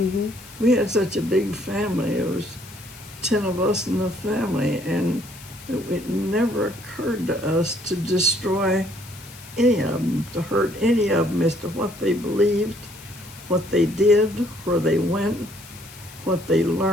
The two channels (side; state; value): left; noise; hiss, 18 dB below the sound